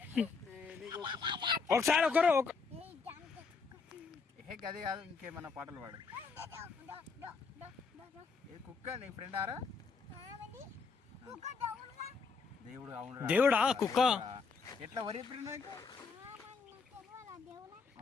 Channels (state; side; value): quieter; right; 4.9 dB